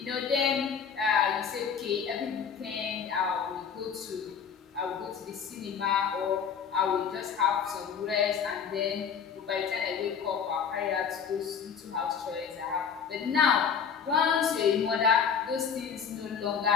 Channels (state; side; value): quieter; right; 6.9 dB